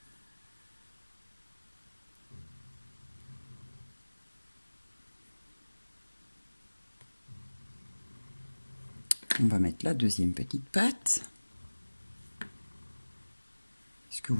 On va mettre la deuxième petite patte. Ce que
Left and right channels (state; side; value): inverted; both; correlation -1.00